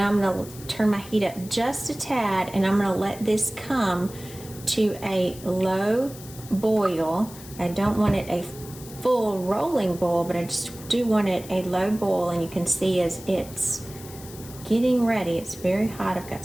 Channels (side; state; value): left; noise; hiss, 17 dB below the sound